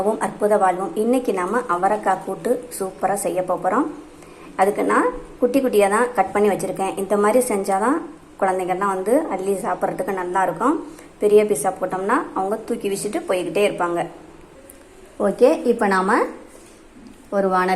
அற்புத வாழ்வும். இன்றைக்கி நம்ம அவரைக்காய் கூட்டு சூப்பராக செய்ய போகிறோம். அதுக்கு நான் குட்டி குட்டியாக தான் கட் பண்ணி வச்சுருக்கேன். இந்த மாதிரி செஞ்சால் தான் குழந்தைங்கள்லாம் அள்ளி சாப்பிட்றதுக்கு நல்லாயிருக்கும். பெரிய பீஸாக போட்டோம்னா அவங்க தூக்கி வீசிட்டு போய்கிட்டே இருப்பாங்க. ஓகே, இப்போ நாம் ஒரு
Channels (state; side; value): identical; both; correlation 1.00